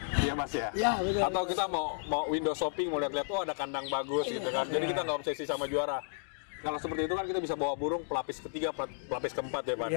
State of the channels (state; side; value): silent; right; digital silence